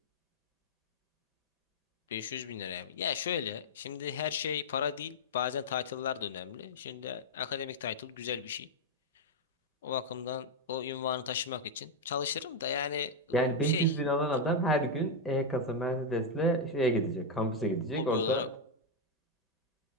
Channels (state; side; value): normal; both; correlation 0.01